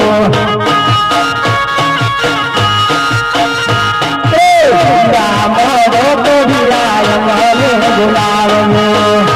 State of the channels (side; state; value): both; identical; correlation 1.00